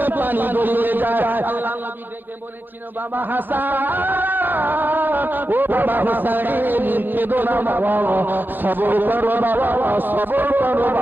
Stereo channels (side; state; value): left; late; 0.092 ms